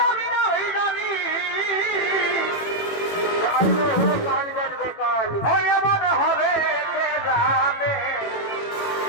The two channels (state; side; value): late; right; 18 ms